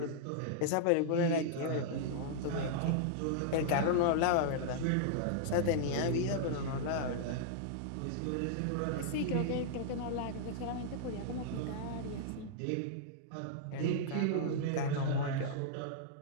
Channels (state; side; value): different; both; correlation -0.01